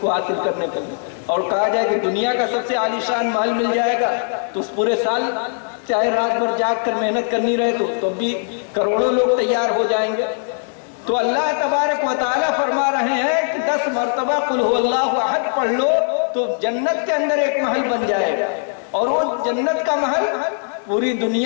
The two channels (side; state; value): right; silent; 66 dB below the other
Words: حاصل کرنے کے لیے. اور کہا جائے کہ دنیا کا سب سے عالی شان محل مل جائے گا تو اس پورے سال چاہے رات بھر جاگ کر محنت کرنی رہے تو بھی کروڑوں لوگ تیار ہو جائیں گے. تو اللہ تبارک و تعالیٰ فرما رہے ہیں کہ 10 مرتبہ قل هو اللہ احد پڑھ لو تو جنت کے اندر ایک محل بن جائے گا. اور وہ جنت کا محل پوری